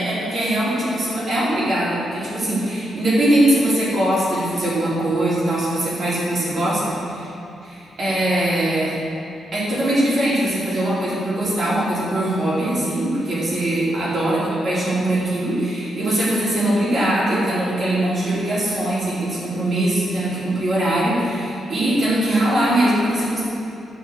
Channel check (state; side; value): normal; both; correlation 0.81